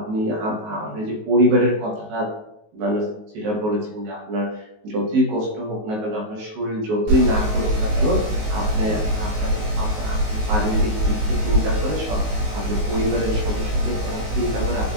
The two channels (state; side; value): late; left; 19 ms